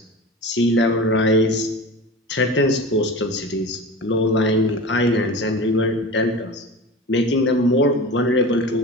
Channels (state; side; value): normal; both; correlation 0.32